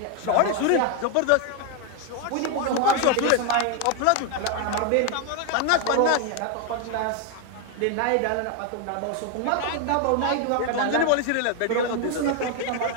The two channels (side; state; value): both; different; correlation 0.01